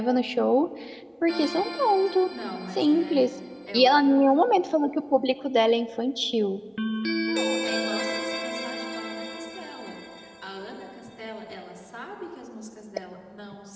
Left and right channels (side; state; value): both; identical; correlation 1.00